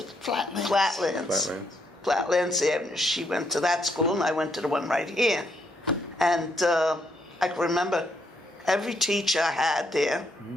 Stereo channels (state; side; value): normal; both; correlation 0.75